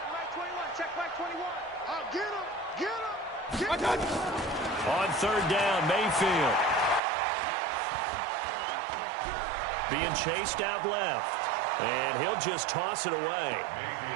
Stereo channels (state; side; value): drops out; left; at 7.0 s